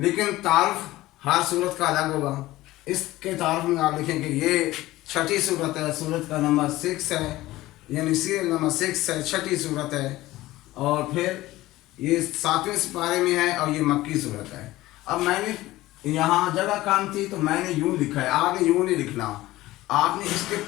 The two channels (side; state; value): right; quieter; 17.2 dB